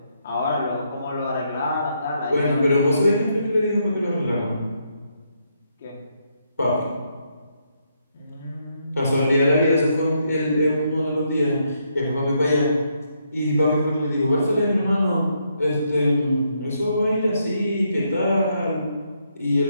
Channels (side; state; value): both; inverted; correlation -0.77